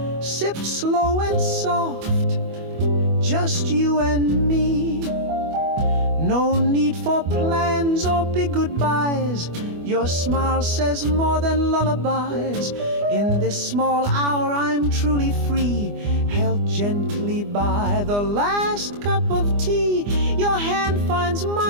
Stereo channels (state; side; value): late; left; 24 ms